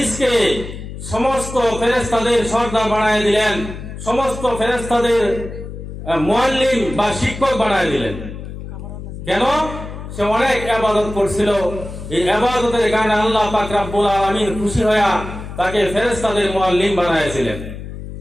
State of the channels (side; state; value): left; noise; hum, 10 dB below the sound